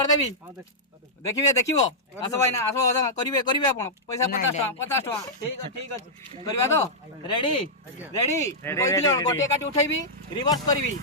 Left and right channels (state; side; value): normal; both; correlation -0.10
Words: देबी देखिबो आसो भाई ना आसो करिवे आपण पैसा 50 टका ठीक अछि करबा तो रेडी गोटे काटी उठैबी रिवर्स करबी